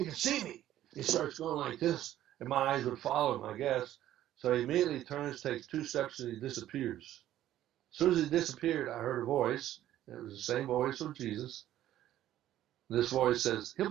can see me." He starts going like this, and my eyes would follow him, I guess. So he immediately turns, takes 2 steps, and he disappears. As soon as he disappeared, I heard a voice. It was the same voice of Jesus. This voice says, "He'll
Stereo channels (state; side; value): quieter; left; 12.8 dB